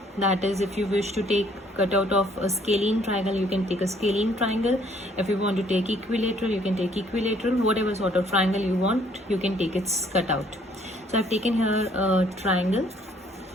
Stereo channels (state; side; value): normal; both; correlation 0.63